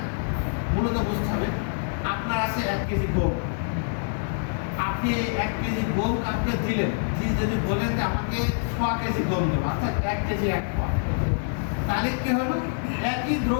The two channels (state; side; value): silent; right; digital silence